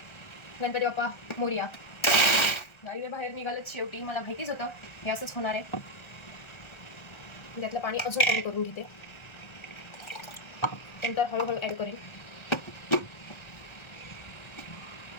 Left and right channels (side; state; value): right; late; 1.3 ms